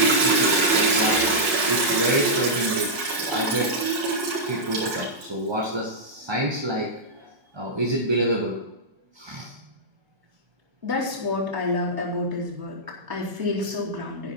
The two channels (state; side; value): late; left; 1.5 ms